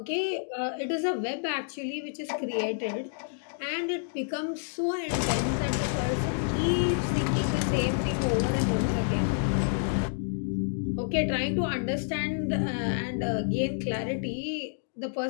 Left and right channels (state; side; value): silent; right; digital silence